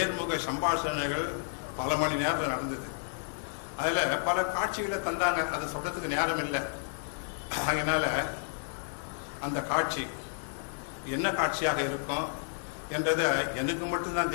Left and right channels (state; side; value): silent; right; digital silence